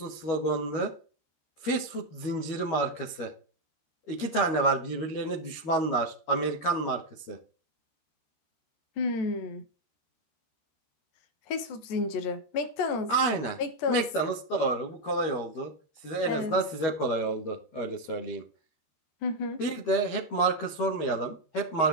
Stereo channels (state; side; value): late; right; 13 ms